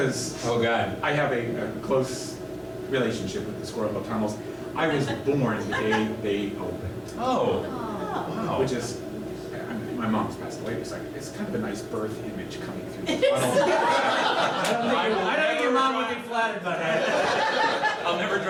Oh God. I have a close relationship with the Squirrel Hill tunnels. I was born the day they opened, Oh. Wow. which is, my mom's passed away, it's kind of a nice birth image coming through the tunnel. I don't think your mom would be flattered by that. I'll never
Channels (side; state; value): both; identical; correlation 1.00